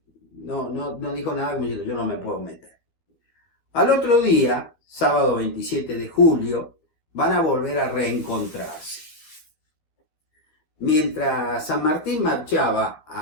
no dijo nada como diciendo, yo no me puedo meter. Al otro día, sábado 27 de julio, van a volver a reencontrarse. Mientras San Martín marchaba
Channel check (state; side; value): late; right; 13 ms